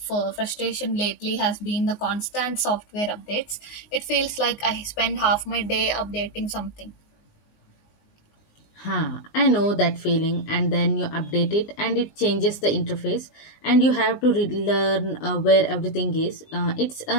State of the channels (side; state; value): right; late; 19 ms